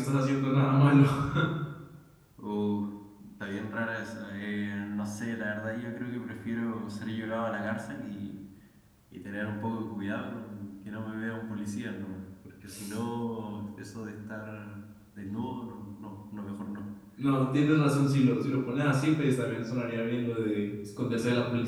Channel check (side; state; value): both; identical; correlation 1.00